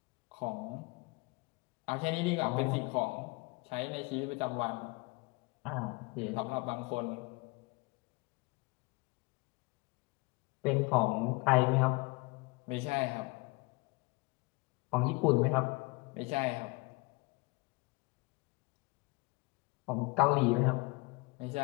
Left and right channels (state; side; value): quieter; right; 26.3 dB